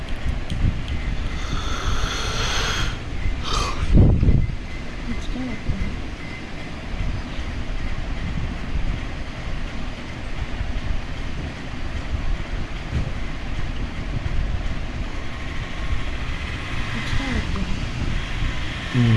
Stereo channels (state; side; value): identical; both; correlation 1.00